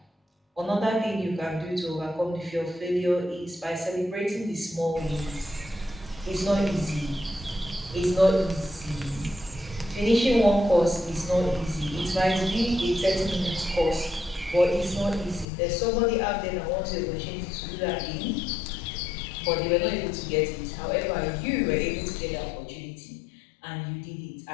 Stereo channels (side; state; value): right; drops out; at 15.5 s